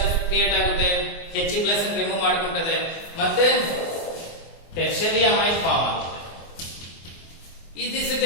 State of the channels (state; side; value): late; right; 24 ms